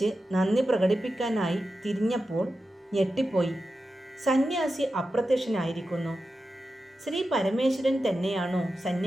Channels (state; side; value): normal; both; correlation 0.91